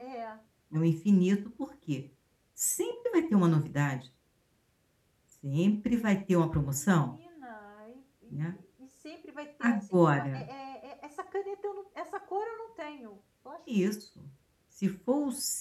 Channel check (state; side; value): identical; both; correlation 1.00